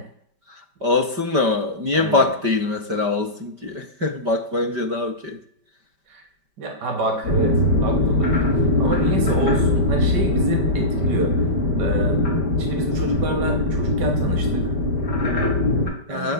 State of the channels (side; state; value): left; late; 5.1 ms